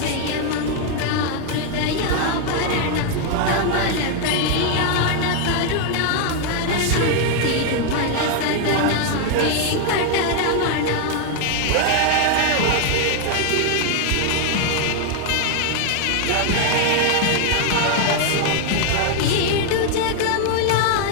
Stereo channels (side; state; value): both; different; correlation 0.00